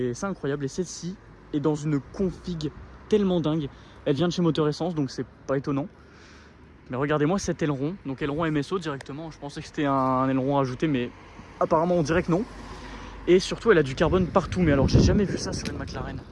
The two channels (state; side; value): identical; both; correlation 1.00